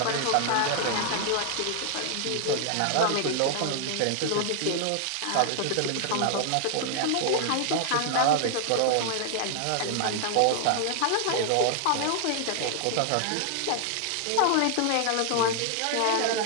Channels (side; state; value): both; different; correlation 0.00